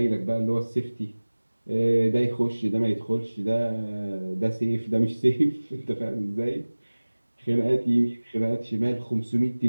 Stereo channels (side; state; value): both; inverted; correlation -1.00